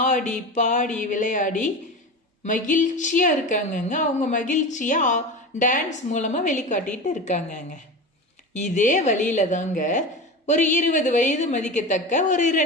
ஆடி பாடி விளையாடி மகிழ்ச்சியா இருக்காங்கங்க. அவங்க மகிழ்ச்சியா டான்ஸ் மூலமா வெளிக்காட்டிட்டு இருக்காங்கங்க. இதே வழியில தாங்க ஒரு 20 வயது மதிக்கத்தக்க ஒரு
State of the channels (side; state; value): both; normal; correlation 0.28